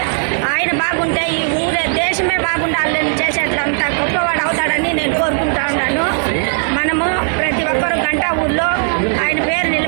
ఆయన బాగుంటే ఈ ఊరే దేశమే బాగుండాలని చేసేటంత గొప్పవాడు అవుతాడని నేను కోరుకుంటా ఉన్నాను. మనము ప్రతి ఒక్కరు గంటా ఊళ్ళో ఆయన పేరు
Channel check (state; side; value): silent; left; 60 dB below the other